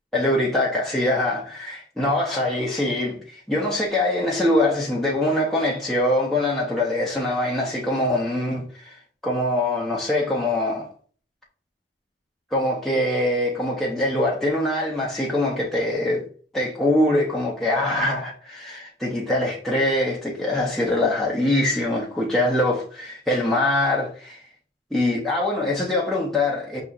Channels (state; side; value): normal; both; correlation 0.43